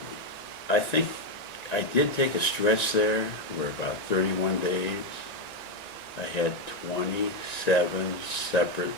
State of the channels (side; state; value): right; late; 1.9 ms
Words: I think I did take a stretch there where about 31 days I had 27 separate